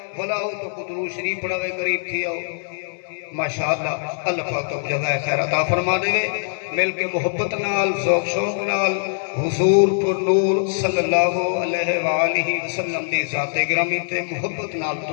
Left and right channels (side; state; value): right; silent; 60 dB below the other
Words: بلا ہو تو درود شریف پڑھاوے قریب تھی آؤ ماشاءاللہ اللہ پاک تو جزائے خیر عطا فرما دے مل کے محبت نال ذوق شوق نال حضور پر نور صلی اللہ علیہ وآلہ وسلم دی ذات گرامی تے محبت نال